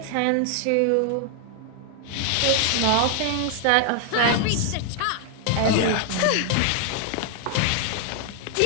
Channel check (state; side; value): different; both; correlation 0.00